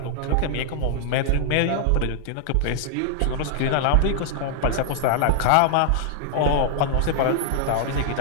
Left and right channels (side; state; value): both; different; correlation -0.01